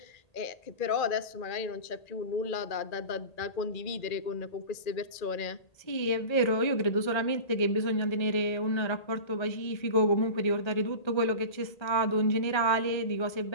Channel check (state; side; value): late; right; 1.8 ms